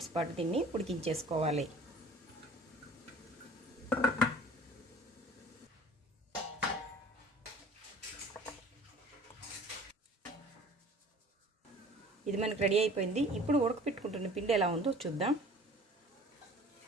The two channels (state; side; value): normal; both; correlation 0.47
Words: పాటు దీన్ని ఉడికించేసుకోవాలి. ఇది మనకు రెడీ అయిపోయింది. ఇప్పుడు ఉడకపెట్టుకుంటున్న పిండి ఎలా ఉందో చూద్దాం.